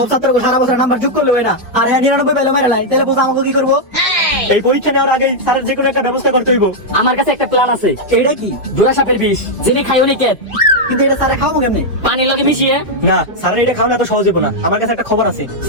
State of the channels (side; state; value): both; normal; correlation -0.03